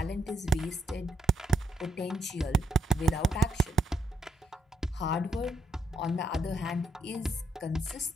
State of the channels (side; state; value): both; normal; correlation 0.77